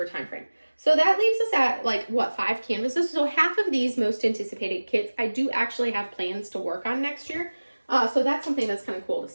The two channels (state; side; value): inverted; both; correlation -1.00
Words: timeframe. So that leaves us at like, what, 5 canvases? So half of these most anticipated kits, I do actually have plans to work on next year. So that's something that's kind of cool to